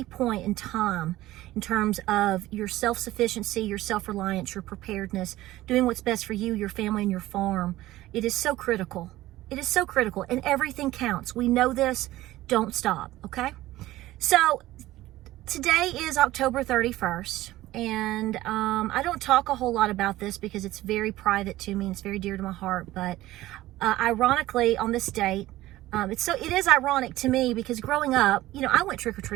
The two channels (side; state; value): left; quieter; 16.4 dB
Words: point in time in terms of your self-sufficiency, your self-reliance, your preparedness, doing what's best for you, your family, and your farm. It is so critical. It is so critical, and everything counts. We know this. Don't stop, okay? So Today is October 31st, and I don't talk a whole lot about this because it's very private to me and it's very dear to my heart, but ironically on this date, it is ironic to me because growing up, I went